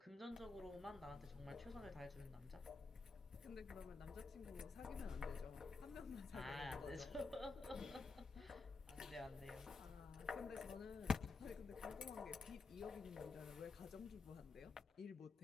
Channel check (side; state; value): right; quieter; 4.1 dB